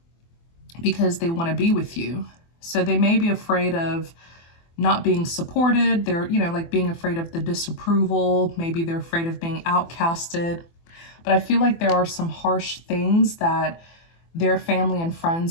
because they want to be with you. So they may be afraid of not being supported. They're, you know, like being afraid of the disapproval. Maybe they're afraid of being outcasted. But I feel like there are some harsh things that their family and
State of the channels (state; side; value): late; right; 24 ms